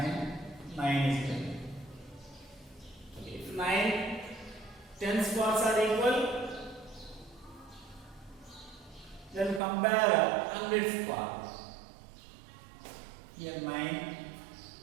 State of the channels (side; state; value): left; drops out; at 9.6 s